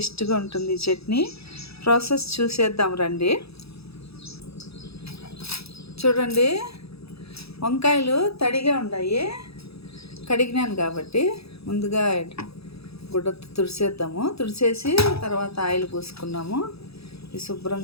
ఉంటుంది ఈ చట్నీ. ప్రాసెస్ చూసేద్దాం రండి. చూడండి, వంకాయలు తడిగా ఉన్నాయి, కడిగినాను కాబట్టి ముందుగా గుడ్డతో తుడిసేద్దాము. తుడిసేసి తర్వాత ఆయిల్ పోసుకున్నాము. ఇది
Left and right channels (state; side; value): late; right; 0.77 ms